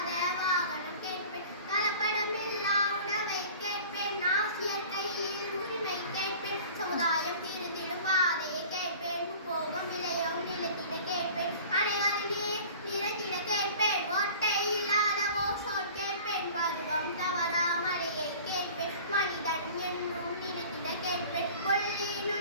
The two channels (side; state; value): both; inverted; correlation -0.43